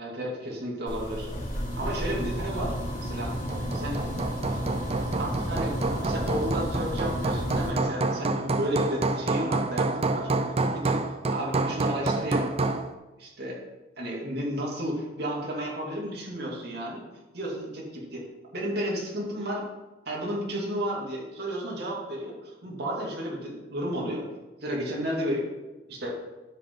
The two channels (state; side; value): normal; both; correlation 0.47